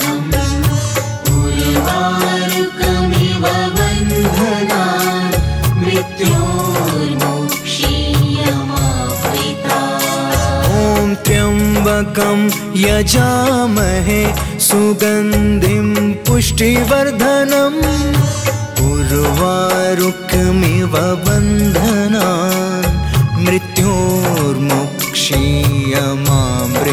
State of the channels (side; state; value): both; identical; correlation 1.00